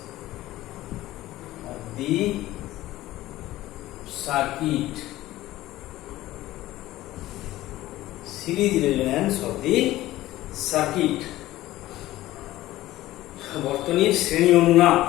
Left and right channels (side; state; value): right; quieter; 16.0 dB